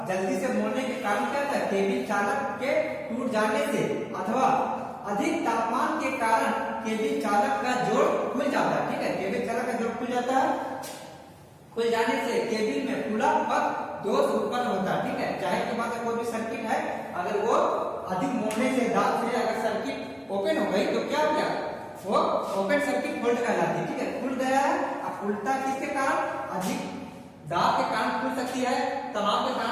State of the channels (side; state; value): both; identical; correlation 1.00